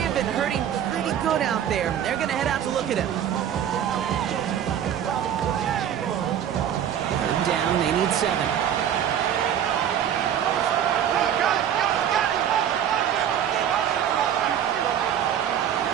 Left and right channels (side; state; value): left; quieter; 9.7 dB